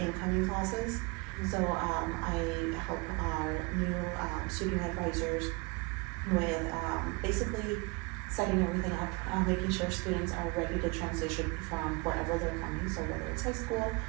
classes. So I help our new student advisors with basically setting everything up, making sure students are ready to transition from wherever they're coming, so whether it's high school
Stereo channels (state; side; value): quieter; left; 28.1 dB